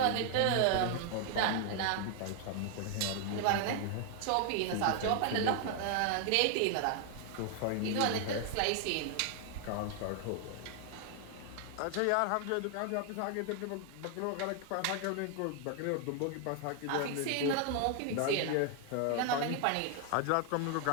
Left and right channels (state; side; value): different; both; correlation 0.00